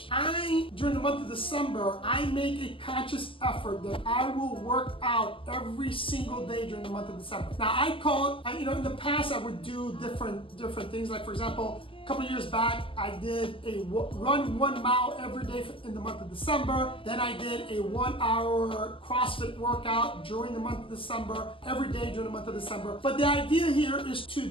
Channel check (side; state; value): right; late; 0.26 ms